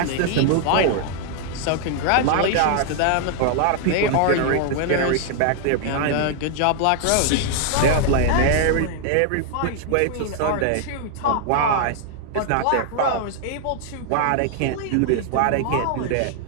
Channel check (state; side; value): different; both; correlation 0.00